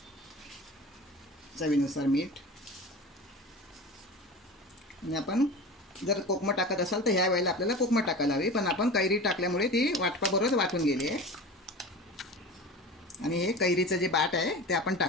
चवीनुसार मीठ. आणि आपण जर कोकमं टाकत असाल तर ह्या वेळेला आपल्याला कोकमं टाकायला हवी, पण आपण कैरी टाकल्यामुळे ती वाटपाबरोबर वाटून गेली आहे. आणि हे कैरीचं जे बाट आहे ते आपण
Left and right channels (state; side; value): normal; both; correlation 0.33